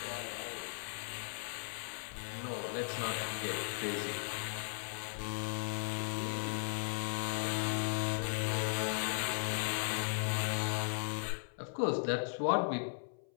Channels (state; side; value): silent; right; 53 dB below the other